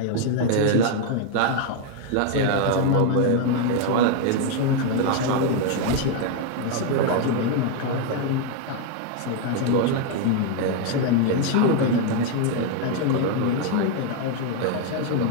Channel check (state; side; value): different; both; correlation 0.00